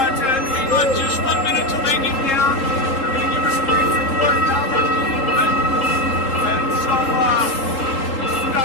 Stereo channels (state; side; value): late; right; 3.8 ms